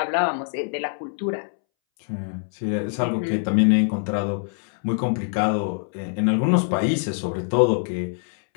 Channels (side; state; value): right; silent; 63 dB below the other